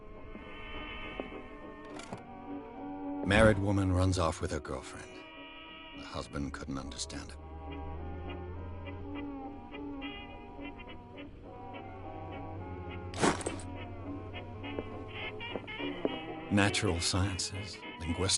Married woman runs off with her girlfriend. The husband couldn't understand it. Natural sciences,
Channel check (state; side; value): identical; both; correlation 1.00